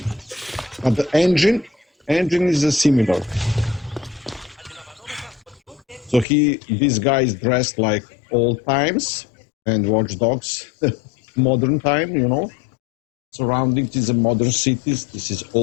but the engine is similar. So this guy is dressed like old times, and Watch Dogs, modern time, you know. Surroundings is a modern cities, this is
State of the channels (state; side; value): drops out; right; at 6.2 s